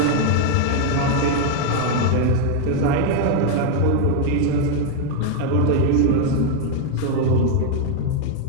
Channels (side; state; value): both; different; correlation 0.01